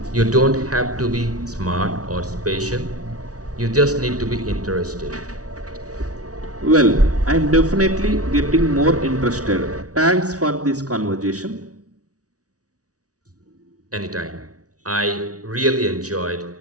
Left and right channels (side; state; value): left; late; 0.67 ms